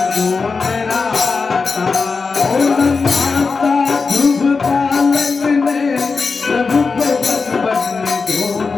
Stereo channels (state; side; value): quieter; right; 4.6 dB